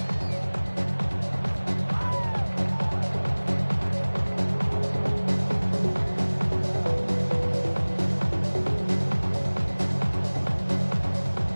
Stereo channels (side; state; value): both; inverted; correlation -1.00